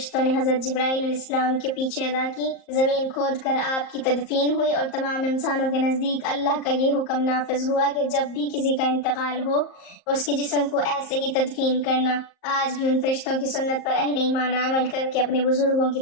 نے حضرت جبرائیل علیہ السلام کے پیچھے ادا کی۔ زمین کھود کر آپ کی تدفین ہوئی اور تمام انسانوں کے نزدیک اللہ کا یہ حکم نافذ ہوا کہ جب بھی کسی کا انتقال ہو اس کے جسم کو ایسے ہی تدفین کرنا۔ آج بھی ان فرشتوں کی سنت پر اہل ایمان عمل کر کے اپنے بزرگوں کی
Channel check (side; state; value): right; late; 38 ms